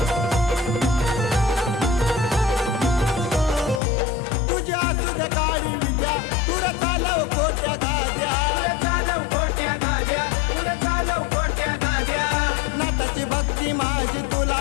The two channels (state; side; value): drops out; right; at 3.8 s